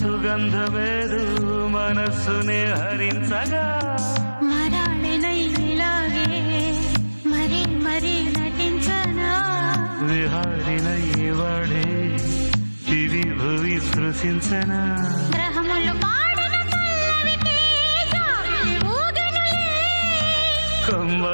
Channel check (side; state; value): both; inverted; correlation -1.00